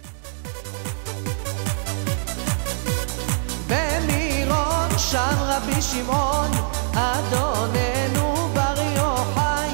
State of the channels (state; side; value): silent; left; digital silence